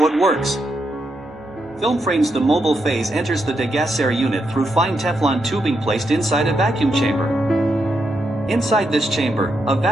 it works. Film frames. The mobile phase enters the degasser unit through fine Teflon tubing placed inside a vacuum chamber. Inside this chamber, a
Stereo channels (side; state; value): both; normal; correlation 0.82